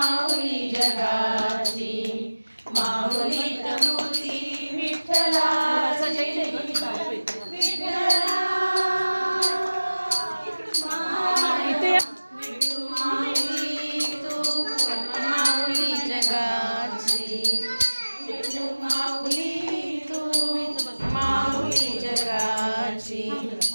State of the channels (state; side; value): inverted; both; correlation -1.00